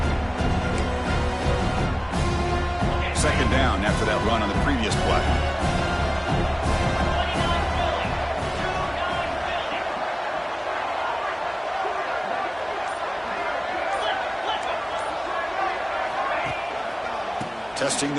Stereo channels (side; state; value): both; identical; correlation 1.00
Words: Second down after that run on the previous play. Testing